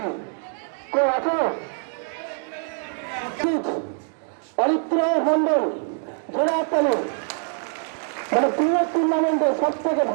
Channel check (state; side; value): silent; left; 56 dB below the other